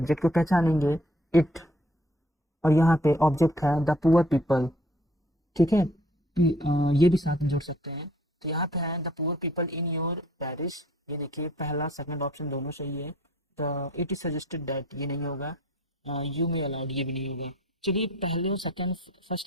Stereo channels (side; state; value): both; normal; correlation 0.57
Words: को पहचानेंगे, इट, और यहाँ पे ऑब्जेक्ट है द पुअर पीपल। ठीक है, ये भी साथ में जोड़ सकते हैं, तो यहाँ पे है the poor people in your Paris. ये देखिए पहला सेकंड ऑप्शन दोनों सही है। The it is suggested that, ये नहीं होगा, यू मे अलाउड, ये भी नहीं होगा। चलिए पहले और सेकंड,